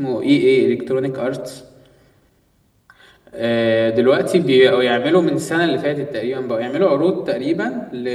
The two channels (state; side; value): identical; both; correlation 1.00